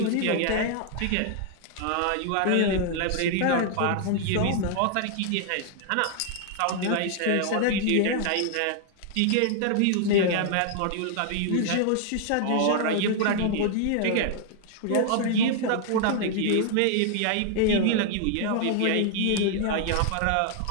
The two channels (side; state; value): both; different; correlation 0.00